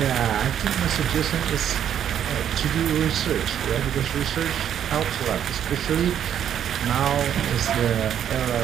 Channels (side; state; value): left; quieter; 9.6 dB